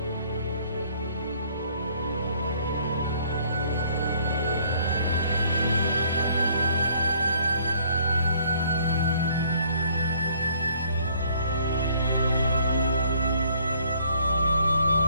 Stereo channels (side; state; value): both; inverted; correlation -0.61